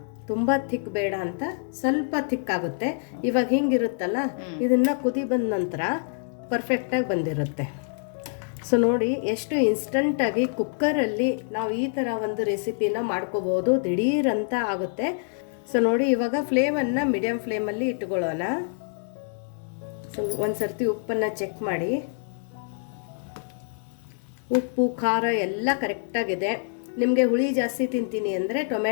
ತುಂಬ ಥಿಕ್ ಬೇಡ ಅಂತ ಸ್ವಲ್ಪ ಥಿಕ್ ಆಗುತ್ತೆ. ಇವಾಗ ಹಿಂಗಿರುತ್ತಲ್ಲ, ಇದನ್ನ ಕುದಿ ಬಂದ ನಂತರ ಪರ್ಫೆಕ್ಟಾಗಿ ಬಂದಿರುತ್ತೆ. ಸೊ ನೋಡಿ ಎಷ್ಟು ಇನ್ಸ್ಟಂಟಾಗಿ ಕುಕ್ಕರಲ್ಲಿ ನಾವು ಈ ಥರ ಒಂದು ರೆಸಿಪಿನ ಮಾಡ್ಕೋಬೋದು, ದಿಢೀರಂತ ಆಗುತ್ತೆ. ಸೊ ನೋಡಿ, ಇವಾಗ ಫ್ಲೇಮನ್ನು ಮೀಡಿಯಮ್ ಫ್ಲೇಮಲ್ಲಿ ಇಟ್ಕೊಳ್ಳೋಣ. ಸೊ ಒಂದು ಸರ್ತಿ ಉಪ್ಪನ್ನು ಚೆಕ್ ಮಾಡಿ. ಉಪ್ಪು ಖಾರ ಎಲ್ಲ ಕರೆಕ್ಟಾಗಿದೆ. ನಿಮಗೆ ಹುಳಿ ಜಾಸ್ತಿ ತಿಂತೀನಿ ಅಂದರೆ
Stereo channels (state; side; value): silent; right; digital silence